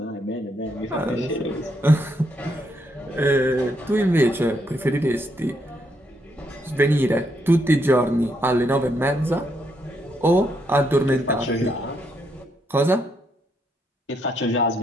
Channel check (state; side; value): normal; both; correlation 0.76